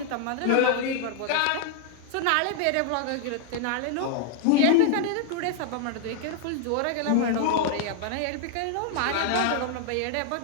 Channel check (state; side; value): different; both; correlation 0.00